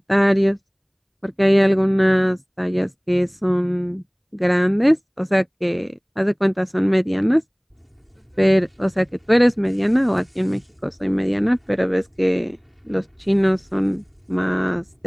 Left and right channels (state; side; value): identical; both; correlation 1.00